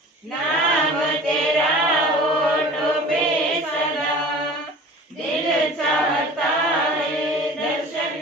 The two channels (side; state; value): both; normal; correlation 0.41